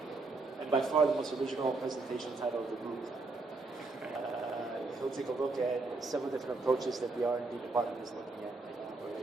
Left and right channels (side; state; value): left; quieter; 3.5 dB